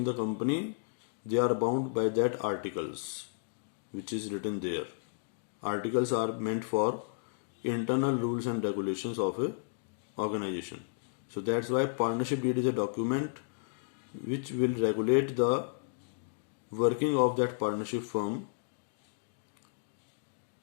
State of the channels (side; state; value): right; silent; digital silence